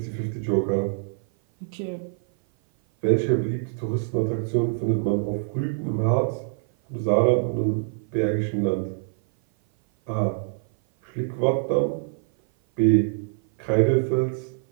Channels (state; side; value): silent; left; 56 dB below the other